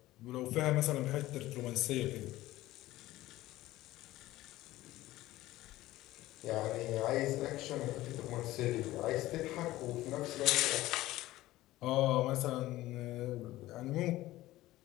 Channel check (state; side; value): quieter; right; 16.5 dB